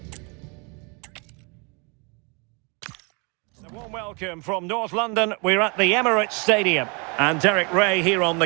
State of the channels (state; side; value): quieter; left; 32.5 dB